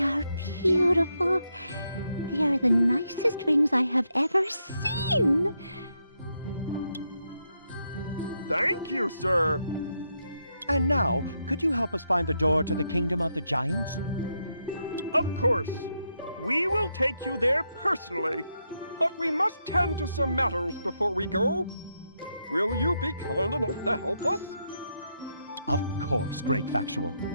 are beautiful. They are the nicest rings I have ever seen. Thank you, sir. And now, could you help us find the door to the Kingdom of the Giants? Of course. We will take you there personally, but we must tend to some matters before we go. Will you be kind enough to help us? Of course, Great Factual.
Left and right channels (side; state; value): both; inverted; correlation -0.81